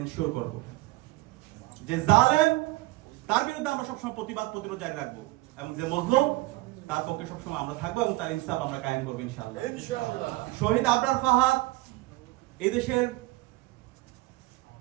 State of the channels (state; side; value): quieter; left; 20.5 dB